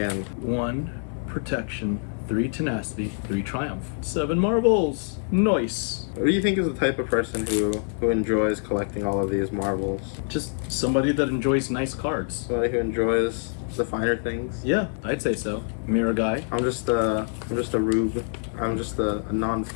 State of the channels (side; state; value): right; silent; 61 dB below the other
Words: 1 Protection, 3 Tenacity, 3 Triumph, 7 Marbles. Nice. What do you think is the type of person who enjoys collecting all of these marbles? Just somebody that enjoys nice cards. Somebody who enjoys the finer things? Yeah, I'd say so. Mirror guy. I'm just a rube. I'm just a